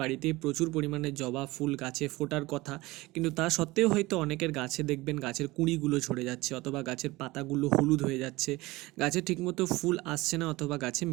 বাড়িতেই প্রচুর পরিমাণে জবা ফুল গাছে ফোটার কথা, কিন্তু তা সত্ত্বেও হয়তো অনেকের গাছে দেখবেন গাছের কুঁড়িগুলো ঝরে যাচ্ছে, অথবা গাছের পাতাগুলো হলুদ হয়ে যাচ্ছে, গাছে ঠিকমতো ফুল আসছে না, অথবা গাছে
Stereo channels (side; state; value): left; quieter; 20.6 dB